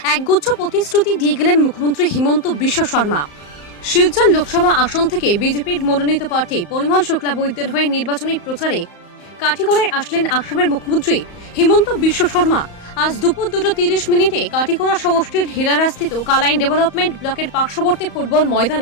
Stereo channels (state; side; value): late; right; 34 ms